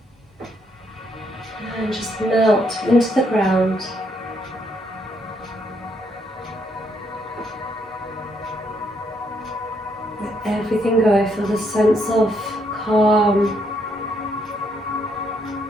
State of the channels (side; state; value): both; normal; correlation 0.74